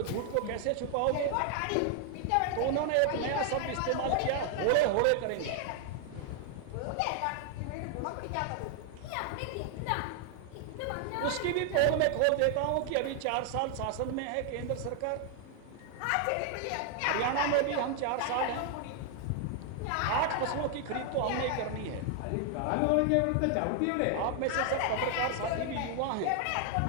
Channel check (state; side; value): different; both; correlation 0.00